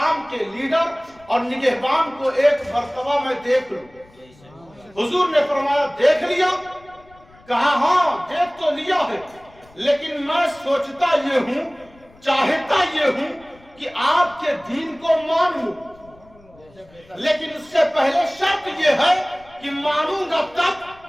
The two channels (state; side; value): noise; left; rumble, 27 dB below the sound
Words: کے لیڈر اور نگہبان کو ایک مرتبہ میں دیکھ لوں۔ حضور نے فرمایا دیکھ لیا؟ کہا ہاں دیکھ تو لیا ہے، لیکن میں سوچتا یہ ہوں، چاہتا یہ ہوں کہ آپ کے دین کو مان لوں، لیکن اس سے پہلے شرط یہ ہے کہ مانوں گا تب